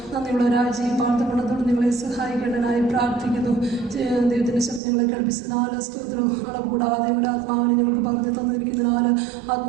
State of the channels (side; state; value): left; drops out; at 4.8 s